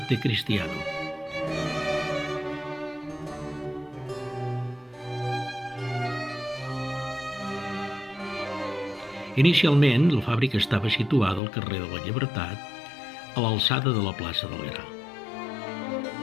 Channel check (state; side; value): drops out; right; at 11.4 s